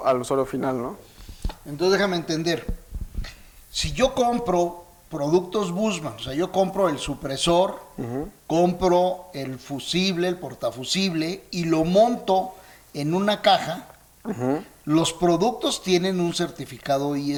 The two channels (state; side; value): identical; both; correlation 1.00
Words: al usuario final, ¿no? Entonces déjame entender, si yo compro productos Bussmann, o sea, yo compro el supresor, compro el fusible, el portafusible y lo monto en una caja, los productos tienen un certificado